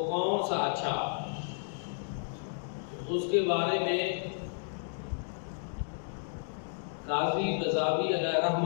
کون سا اچھا، اس کے بارے میں قاضی قذافی علیہ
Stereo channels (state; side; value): silent; right; digital silence